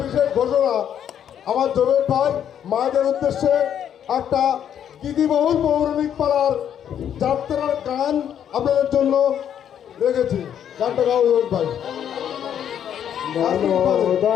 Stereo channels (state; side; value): quieter; right; 9.4 dB